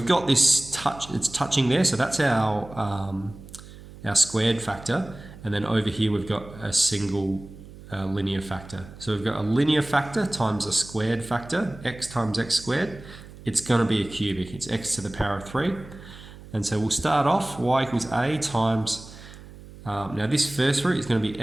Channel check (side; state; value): right; noise; hum, 17 dB below the sound